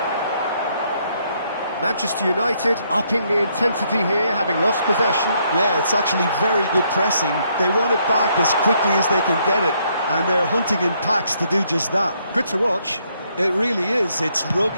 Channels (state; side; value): inverted; both; correlation -0.72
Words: Manchester United upping the intensity here, having lost possession. Yeah, it's actually very good pressing. They want it back as quickly as they can get it, and they're hunting in packs to do just that. Good to watch. It really is. It's